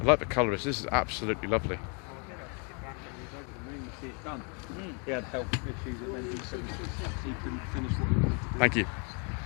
I like the colour. This is absolutely lovely. He had health issues that meant he couldn't finish what he wanted to do. Thank you.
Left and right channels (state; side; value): quieter; right; 36.8 dB